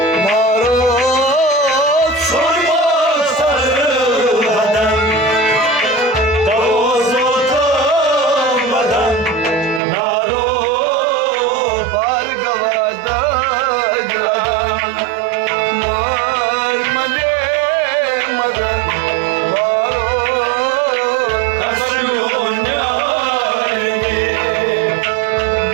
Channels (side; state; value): left; drops out; at 9.8 s